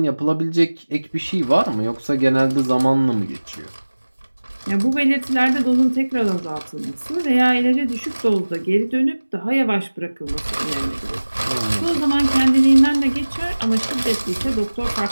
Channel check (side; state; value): both; inverted; correlation -1.00